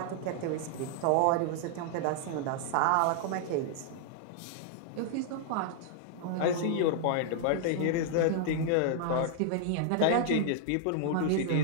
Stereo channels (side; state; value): both; different; correlation -0.01